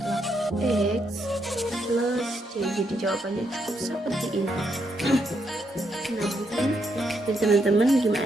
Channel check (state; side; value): normal; both; correlation 0.78